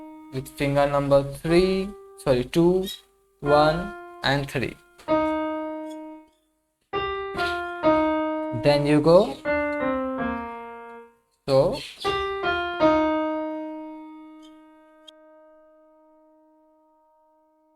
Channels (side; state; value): both; identical; correlation 1.00